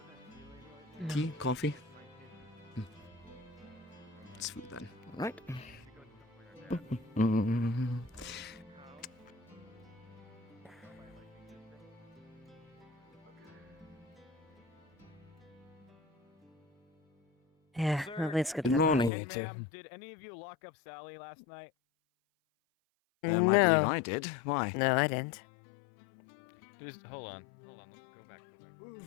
No. Tea? Coffee? It's food then, alright? Yeah, Sir, at least good Good luck. morning, Hey, you two. ma'am, did any of you lock up Sally last night? I believe No. I did. Why? No, I didn't. Hold on. Go back.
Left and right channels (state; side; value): drops out; right; at 19.1 s